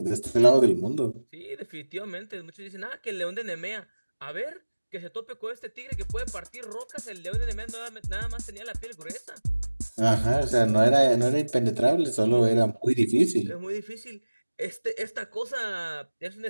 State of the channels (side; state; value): both; inverted; correlation -1.00